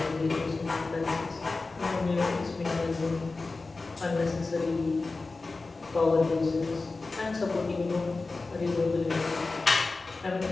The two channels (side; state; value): right; quieter; 3.7 dB